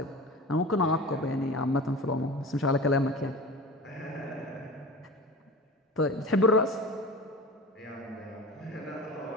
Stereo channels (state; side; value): normal; both; correlation 0.36